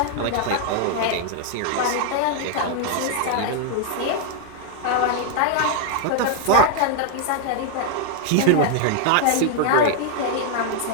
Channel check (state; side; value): different; both; correlation 0.00